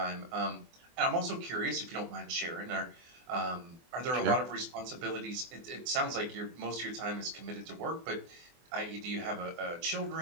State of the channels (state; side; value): late; left; 24 ms